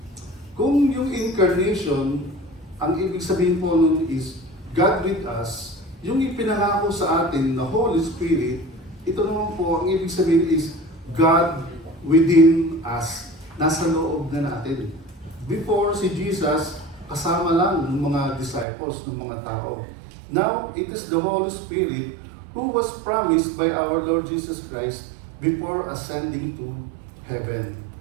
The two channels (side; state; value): left; drops out; at 18.7 s